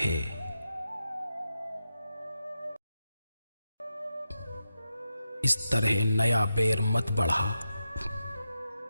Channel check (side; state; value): both; inverted; correlation -0.88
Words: इस तरह नया बैर मत बढ़ा,